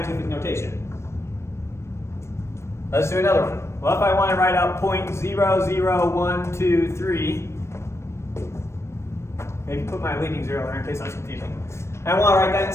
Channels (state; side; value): late; right; 0.13 ms